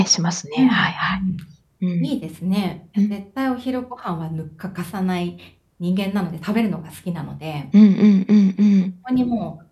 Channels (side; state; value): both; identical; correlation 1.00